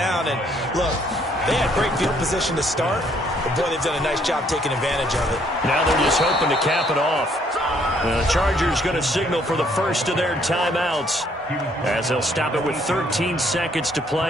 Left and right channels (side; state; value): both; normal; correlation 0.66